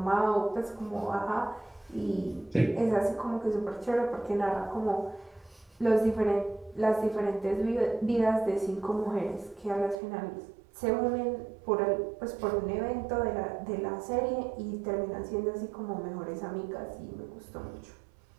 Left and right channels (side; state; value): left; drops out; at 10.0 s